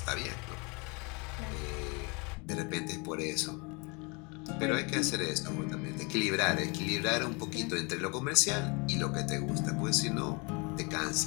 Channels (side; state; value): right; quieter; 30.2 dB